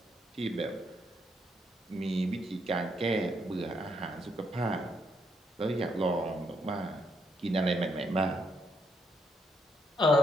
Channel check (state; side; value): normal; both; correlation 0.75